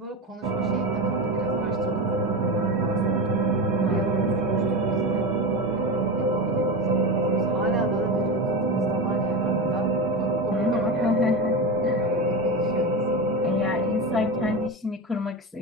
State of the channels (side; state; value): both; normal; correlation 0.22